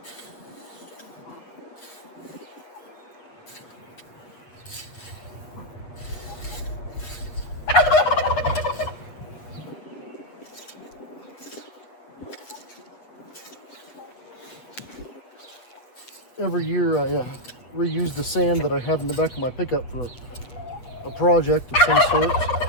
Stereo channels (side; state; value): right; late; 8.0 ms